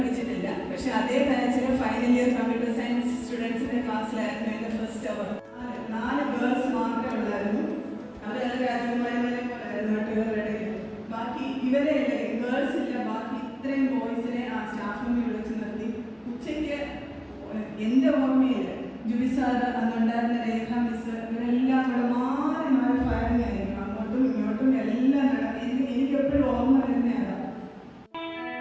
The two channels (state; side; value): identical; both; correlation 1.00